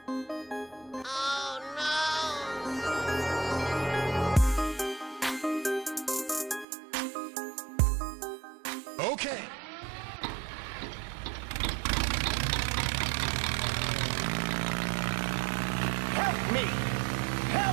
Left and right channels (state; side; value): drops out; left; at 6.7 s